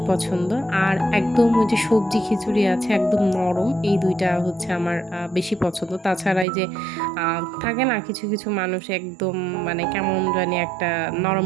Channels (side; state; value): left; drops out; at 6.5 s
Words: পছন্দ। আর একদম ওই যে সবজি খিচুড়ি আছে একদম নরম, এই ২ টা হচ্ছে আমার বেশি পছন্দ। তাছাড়া এই যে আ থাকে না কিছু মানুষ একদম মানে কেমন জানি একটা